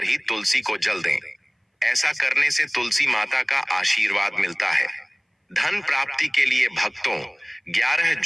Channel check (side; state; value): both; identical; correlation 1.00